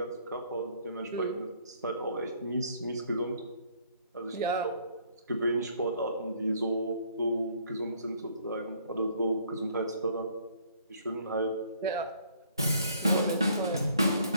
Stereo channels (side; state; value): both; inverted; correlation -0.62